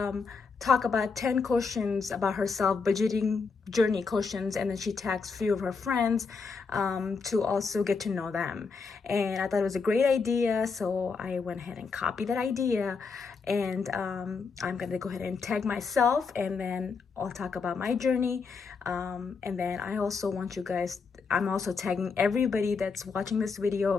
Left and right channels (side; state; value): right; quieter; 4.9 dB